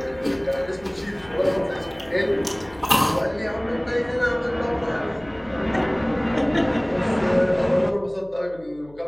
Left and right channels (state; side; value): noise; left; hum, 24 dB below the sound